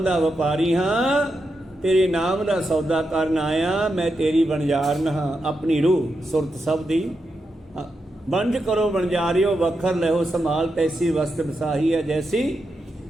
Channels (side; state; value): both; normal; correlation 0.86